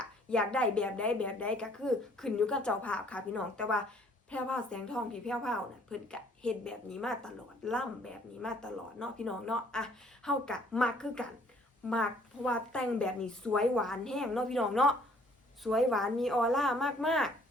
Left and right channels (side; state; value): both; normal; correlation 0.60